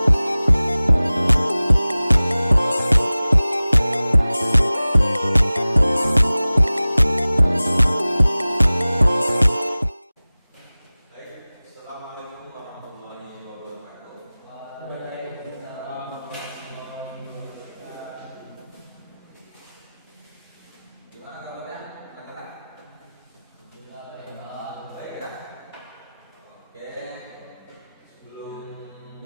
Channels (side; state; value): both; inverted; correlation -0.98